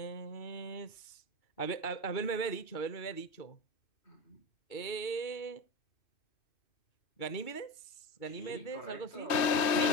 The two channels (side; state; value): right; late; 2.6 ms